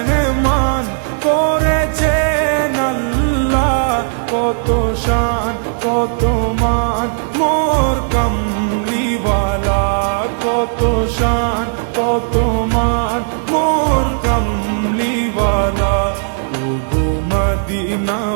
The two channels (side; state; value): left; silent; digital silence